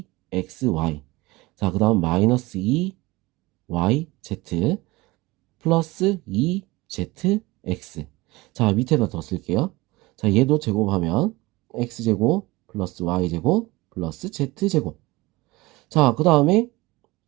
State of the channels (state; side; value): quieter; left; 21.3 dB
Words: 자, 그 다음 마이너스 2yz 플러스 2zx. 자, 밑에다 더 쓸게요. 자, 얘도 제곱하면 x제곱 플러스 y제곱 플러스 z제곱. 자, 그 다음에